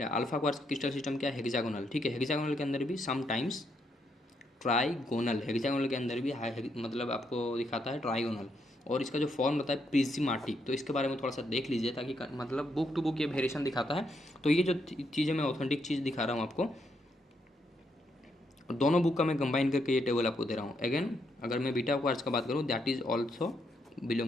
हैं, अल्फा क्वार्ट्ज क्रिस्टल सिस्टम क्या है, हेक्सागोनल, ठीक है। हेक्सागोनल के अंदर भी समटाइम्स ट्राइगोनल, हेक्सागोनल के अंदर भी मतलब आपको दिखाता है ट्राइगोनल, और इसका जो फॉर्म होता है प्रिज्मेटिक। तो इसके बारे में थोड़ा सा देख लीजिए ताकि मतलब बुक टू बुक ये वेरिएशन दिखाता है। तो ये जो चीज़ें मैं ऑथेंटिक चीज़ दिखा रहा हूँ आपको, दोनों बुक का मैं कंबाइन करके ये टेबल आपको दे रहा हूँ। अगेन अगर मैं बीटा क्वार्ट्ज का बात करूँ, that is also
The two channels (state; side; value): normal; both; correlation 0.77